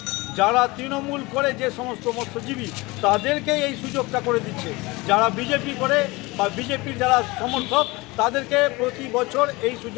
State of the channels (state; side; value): quieter; right; 23.2 dB